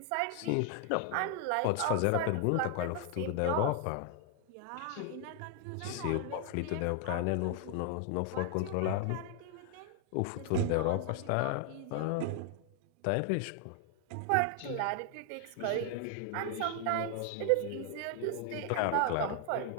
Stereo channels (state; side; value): different; both; correlation 0.00